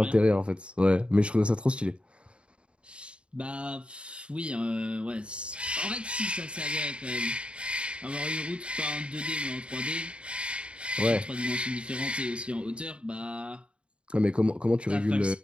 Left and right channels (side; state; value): left; late; 0.057 ms